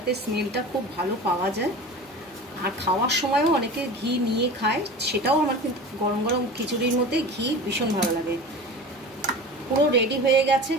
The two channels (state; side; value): normal; both; correlation 0.34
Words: স্মেলটা খুব ভালো পাওয়া যায়। আর খাওয়ার সময়ও অনেকে ঘি নিয়ে খায়, সেটাও আমার কিন্তু গরম গরম খিচুড়ির মধ্যে ঘি ভীষণ ভালো লাগে। পুরো রেডি হয়ে গেছে।